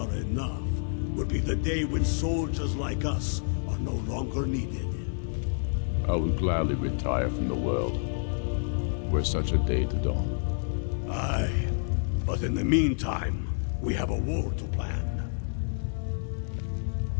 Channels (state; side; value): silent; right; 55 dB below the other